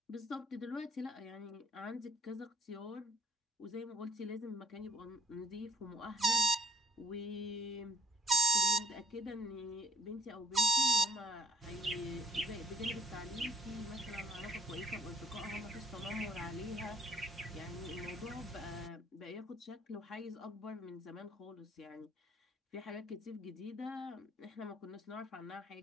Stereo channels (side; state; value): both; normal; correlation 0.72